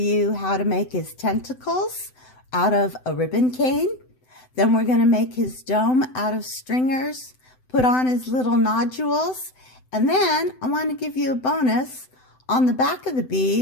how to make his tentacles out of a ribbon cane. Then we're going to make his dome out of stringers, put on his little nodules, and then I want to give you a bonus. On the back of the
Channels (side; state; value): right; late; 7.9 ms